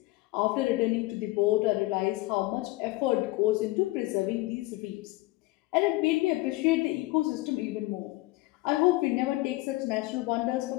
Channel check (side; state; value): right; quieter; 20.1 dB